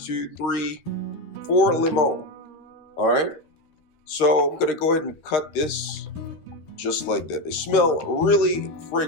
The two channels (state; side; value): late; right; 13 ms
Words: 3, 4 lemon. All right, so I'm going to go ahead and cut this just like that. They smell really